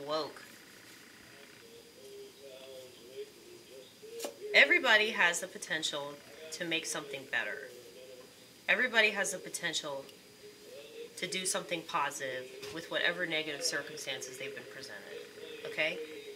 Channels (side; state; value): both; identical; correlation 1.00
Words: woke. Everybody has the potential to make something better. Everybody has the potential to do something positive with whatever negative circumstances they've been presented. Okay?